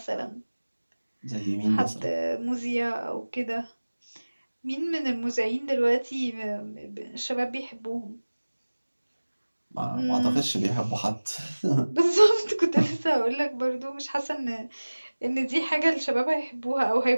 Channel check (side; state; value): both; inverted; correlation -1.00